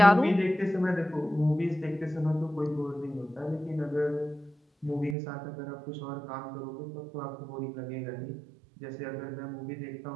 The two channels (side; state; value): left; drops out; at 5.2 s